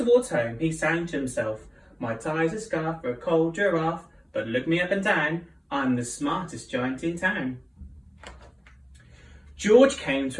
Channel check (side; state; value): both; identical; correlation 1.00